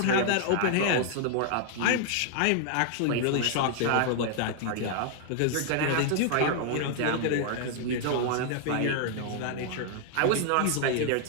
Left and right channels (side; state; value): both; different; correlation 0.00